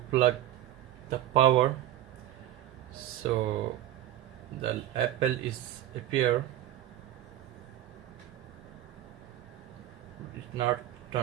plug the power, so the Apple is appear, it's not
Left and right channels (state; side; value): quieter; left; 13.0 dB